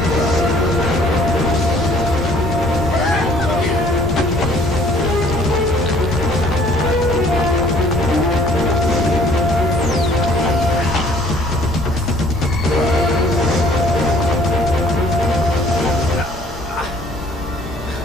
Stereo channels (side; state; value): both; normal; correlation 0.56